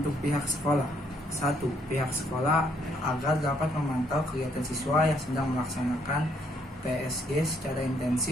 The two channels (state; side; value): normal; both; correlation 0.70